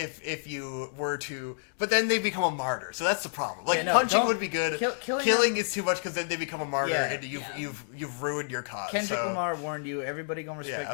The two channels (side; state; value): right; silent; digital silence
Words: you were to, but then they become a martyr. So that's the problem. Like Yeah, no, punching don't- would be good. killing Killing them- is too much because then they become a martyr Yeah. and you've ruined your cause. Kendrick so, Lamar warned you. Everybody gonna respect